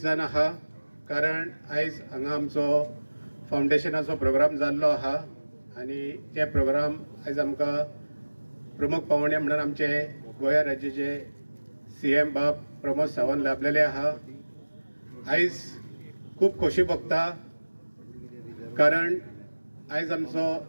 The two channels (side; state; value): both; inverted; correlation -1.00